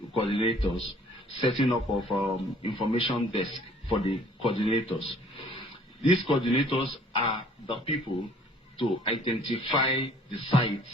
coordinators, setting up of information desk for the coordinators. These coordinators are the people to identify the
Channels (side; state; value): both; normal; correlation 0.56